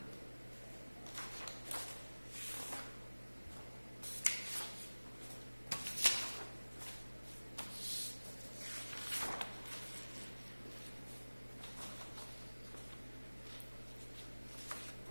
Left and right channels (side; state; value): both; inverted; correlation -1.00